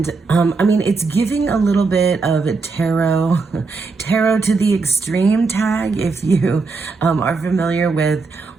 it's giving a little bit of tarot to the extreme tag. If you are familiar with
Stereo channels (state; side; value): quieter; left; 4.2 dB